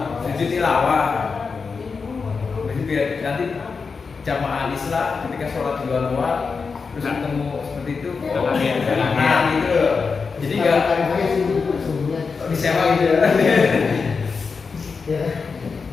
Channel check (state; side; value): quieter; right; 5.0 dB